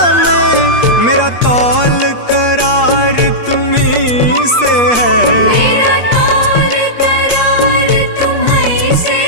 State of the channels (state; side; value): late; right; 8.4 ms